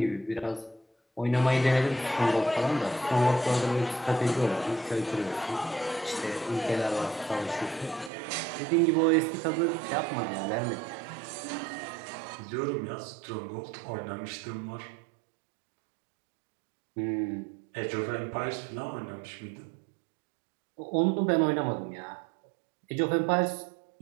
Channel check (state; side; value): drops out; left; at 8.1 s